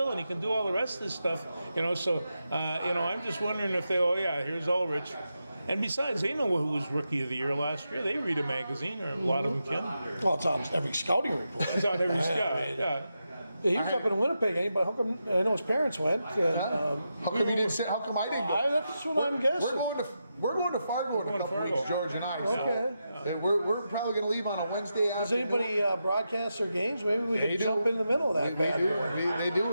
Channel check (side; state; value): both; inverted; correlation -0.87